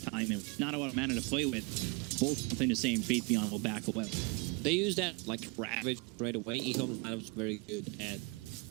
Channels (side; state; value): left; quieter; 30.9 dB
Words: and not a lot of mana to play with. Both nothing the same. Faith Beyond will back away. They use that like Ravage right away. EHOME's lineup very good at